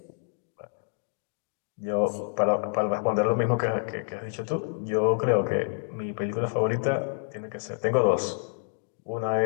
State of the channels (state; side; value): silent; right; digital silence